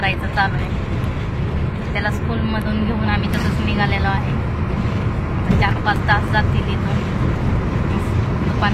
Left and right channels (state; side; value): identical; both; correlation 1.00